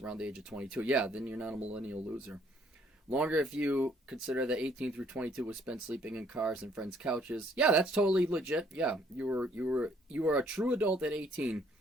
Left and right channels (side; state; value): both; normal; correlation 0.64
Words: around the age of 22. Yeah, then you're not a millennial loser. Longer if you consider that 18 through 22 was spent sleeping in cars and friends' couches. Yeah, that's totally legit. Yeah, you were a true adult at 18,